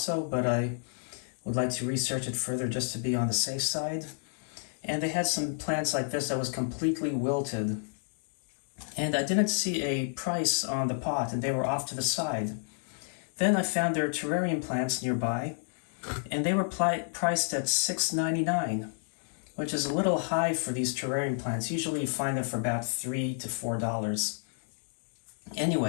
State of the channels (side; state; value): right; silent; digital silence